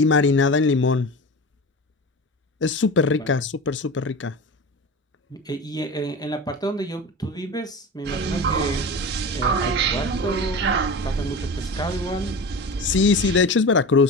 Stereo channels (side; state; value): both; normal; correlation 0.30